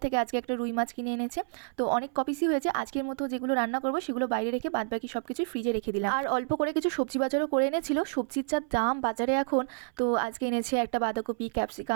থেকে আজকে একটা রুই মাছ কিনে এনেছে। তো অনেক কপিসই হয়েছে। আজকের মতো যেগুলো রান্না করবো সেগুলো বাইরে রেখে বাদবাকি সব কিছু ফ্রিজে রেখে দিলাম। আর অল্প করে কিছু সবজি বাজারও করে এনেছিল। সবজির যা দাম বাজারে এখন, তো আজকে এনেছে একটা বাঁধাকপি,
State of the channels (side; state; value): left; silent; 58 dB below the other